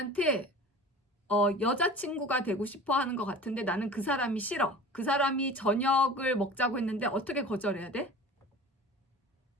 여자친구가 되고 싶어 하는 것 같은데 나는 그 사람이 싫어. 그 사람이 저녁을 먹자고 했는데 어떻게 거절해야 돼?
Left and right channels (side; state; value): both; normal; correlation 0.39